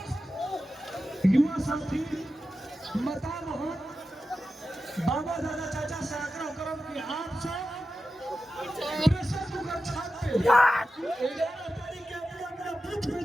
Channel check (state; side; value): normal; both; correlation 0.92